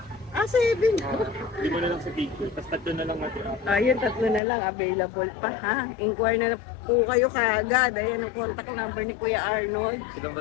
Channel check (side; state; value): right; drops out; at 4.4 s